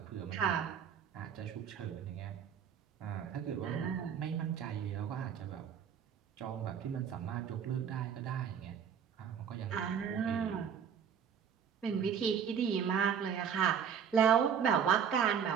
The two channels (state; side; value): quieter; left; 7.8 dB